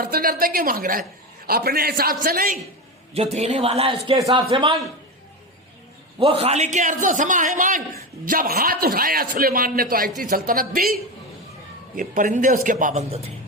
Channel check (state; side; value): normal; both; correlation 0.18